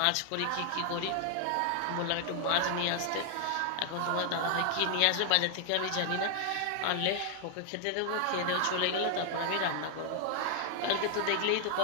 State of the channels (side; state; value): both; different; correlation 0.00